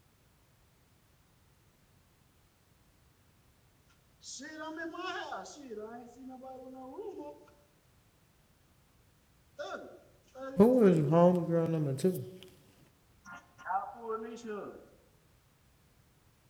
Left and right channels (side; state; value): both; identical; correlation 1.00